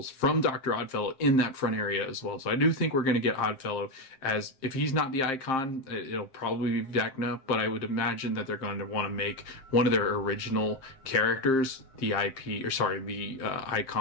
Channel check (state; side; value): late; right; 7.5 ms